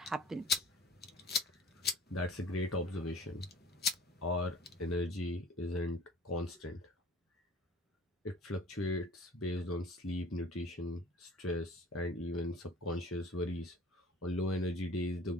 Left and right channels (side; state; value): both; normal; correlation 0.45